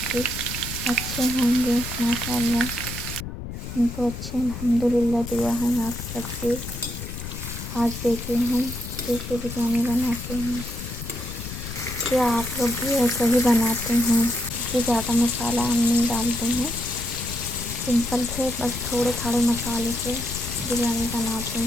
भी अच्छे होंगे। माशाअल्लाह हम तो अच्छे, अल्हम्दुलिल्लाह। दुआ है आप सबकी। आज देखिए हम कैसे बिरयानी बनाते हैं। क्या आप लोग भी ऐसा ही बनाते हैं? क्योंकि ज़्यादा मसाला हम नहीं डालते हैं, सिंपल से बस थोड़े थोड़े मसाले से बिरयानी बनाते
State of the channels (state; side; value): noise; left; rumble, 8 dB below the sound